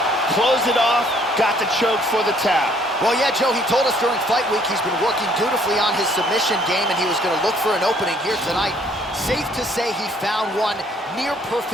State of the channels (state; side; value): normal; both; correlation 0.62